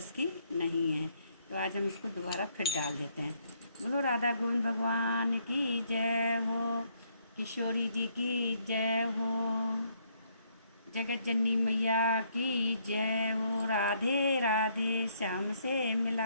की नहीं है। तो आज हम इसको दोबारा फिर डाल देते हैं। बोलो राधा गोविंद भगवान की जय हो, किशोरी जी की जय हो, जगत जननी मैया की जय हो। राधे राधे श्याम से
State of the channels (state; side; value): inverted; both; correlation -0.70